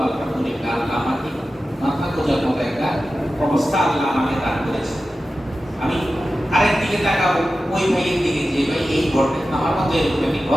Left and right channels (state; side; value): normal; both; correlation 0.93